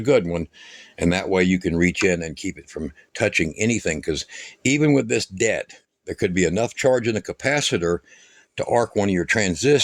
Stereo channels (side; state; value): both; identical; correlation 1.00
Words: good one. And that way you can reach in and keep it from touching anything, because even with this dead, there could be enough charge in the capacitor to arc one of your